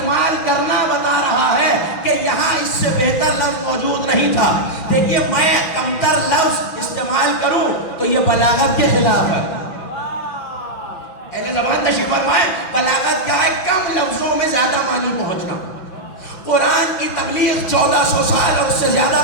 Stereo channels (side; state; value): right; late; 6.0 ms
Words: کرنا بتا رہا ہے کہ یہاں اس سے بہتر لفظ موجود نہیں تھا. دیکھیے میں کمتر لفظ استعمال کروں تو یہ بلاغت کے خلاف ہے. اہل زبان تشریف فرمائے بلاغت کیا ہے؟ کم لفظوں میں زیادہ معنی پہنچنا. قرآن کی تبلیغ 1400 سال اور اس سے زیادہ